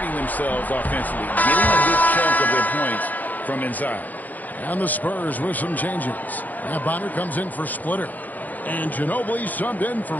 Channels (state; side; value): late; right; 0.082 ms